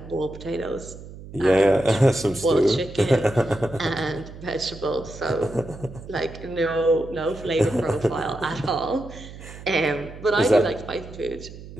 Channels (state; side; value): noise; right; hum, 15 dB below the sound